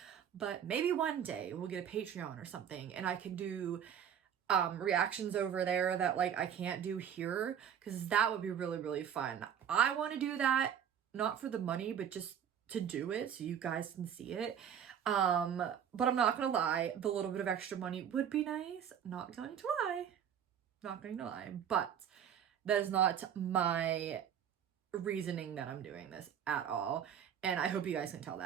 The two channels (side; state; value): left; quieter; 8.7 dB